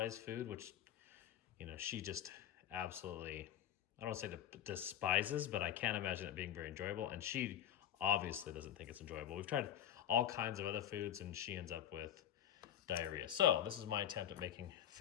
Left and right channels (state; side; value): quieter; right; 10.7 dB